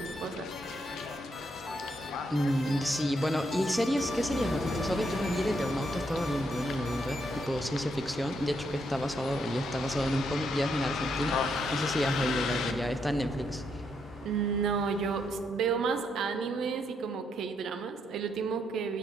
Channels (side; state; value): both; normal; correlation 0.77